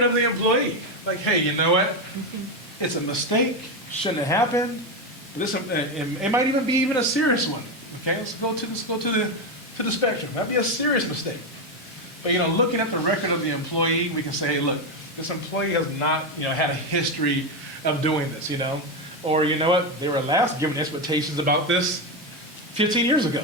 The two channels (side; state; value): both; normal; correlation 0.11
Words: of the employee. Like, hey, you know what? It's a mistake, shouldn't have happened. It might even be a serious one. Okay, let's go to the spectrum. That'd be a serious mistake. But looking at the record of the employee, we can say, hey, look, this employee has not, had a history of doing this, Or you know what, they were last given expectations about this 15 years ago.